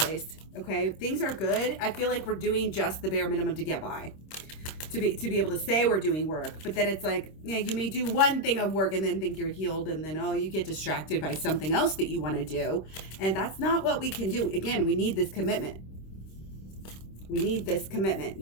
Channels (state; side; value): late; right; 26 ms